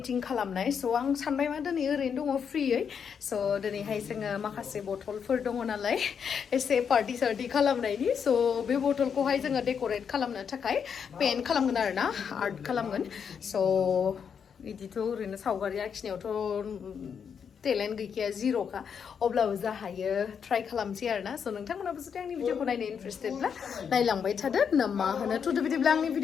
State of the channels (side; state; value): right; quieter; 7.1 dB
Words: खालामनाय स आं सानबाय मा दिनै ओरैनो दङ फ्रियै स दिनैहाय जोङो माखासे बटलफोर दङ नालाय एसे पार्टी सार्टी खालामनायनि स बे बटलखौहाय जोङो डेक'रेट खालामनो थाखाय पेइन्ट खालामगोन आरोना आर्ट खालामगोन स बिदिथ' ओरैनो सावगारि आखिनायावथ' टेलेन्ट गैखाया जिर'खा अब्लाबो जा हायो ट्राइ खालामसै आरोना स नोंथांमोनाबो जुदि आंनि भिडिअखौ नायनो इन्टारेस्टेडब्ला नायलांबाय थादो ना मा होनो थुदो बिदिब्ला आंनि